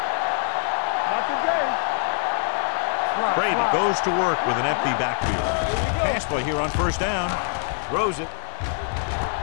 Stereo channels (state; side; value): silent; right; digital silence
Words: Not today. Brady goes to work with an empty backfield. Pass play here on first down. Throws it.